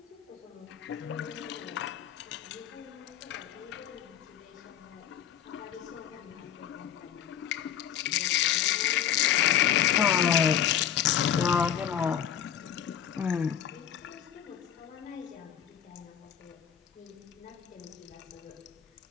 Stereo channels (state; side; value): quieter; right; 9.8 dB